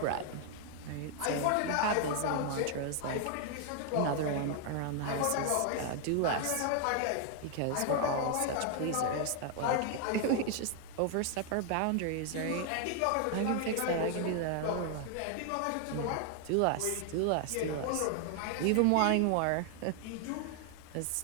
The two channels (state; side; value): different; both; correlation 0.00